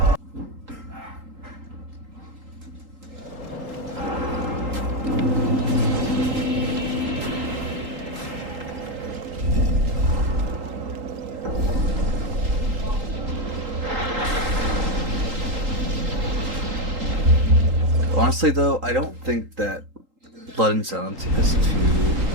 Honestly, though, I don't think that Blood and Zallen is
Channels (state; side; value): late; left; 3.8 ms